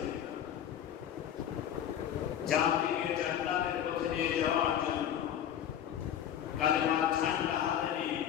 জাতিকে জান্নাতের পথে নিয়ে যাওয়ার জন্য কালেমার ঝান্ডা হাতে নিয়ে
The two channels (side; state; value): right; quieter; 9.9 dB